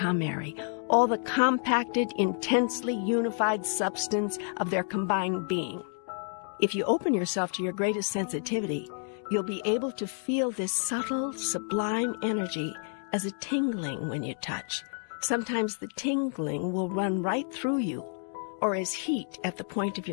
Mary, all the compacted, intensely unified substance of their combined being. If you open yourself to your greatest sensitivity, you'll be able to feel this subtle, sublime energy as a tingling when you touch. Sometimes the tingling will run right through you, or as heat at the point of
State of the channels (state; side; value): silent; right; 58 dB below the other